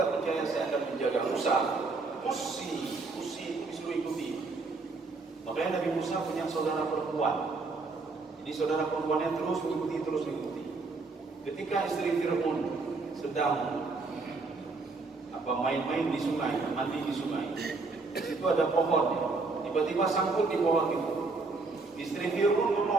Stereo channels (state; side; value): quieter; left; 3.8 dB